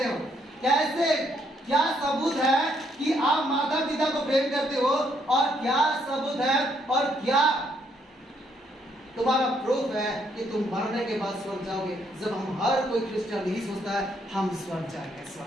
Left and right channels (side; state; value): both; normal; correlation 0.71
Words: हो? कैसे? क्या सबूत है कि आप माता पिता को प्रेम करते हो? और क्या सबूत है और क्या तुम्हारा प्रूफ है कि तुम मरने के बाद स्वर्ग जाओगे? जब हम हर कोई क्रिश्चियन यही सोचता है हम स्वर्ग जाएंगे,